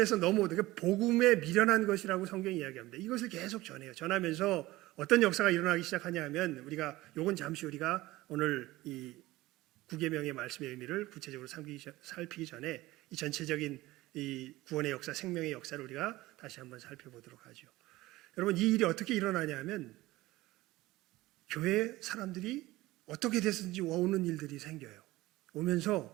넘어오는 게 복음에 미련한 것이라고 성경이 이야기합니다. 이것을 계속 전해요. 전하면서 어떤 역사가 일어나기 시작하냐 하면 우리가 요건 잠시 우리가 오늘 이 구계명의 말씀의 의미를 구체적으로 살피기 전에 이 전체적인 이 구원의 역사, 생명의 역사를 우리가 다시 한번 살펴보도록 하죠. 여러분 이 일이 어떻게 일어나냐 하면 교회 사람들이 어떻게 됐든지 오는 일들이 생겨요.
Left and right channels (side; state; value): left; quieter; 18.3 dB